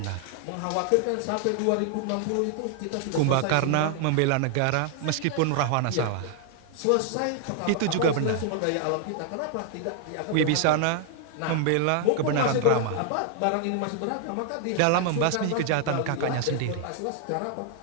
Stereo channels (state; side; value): different; both; correlation 0.00